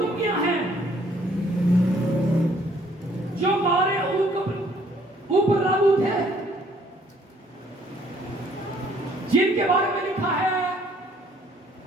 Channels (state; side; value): normal; both; correlation 0.63